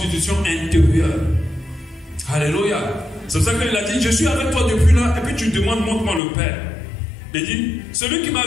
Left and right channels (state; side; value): drops out; right; at 6.2 s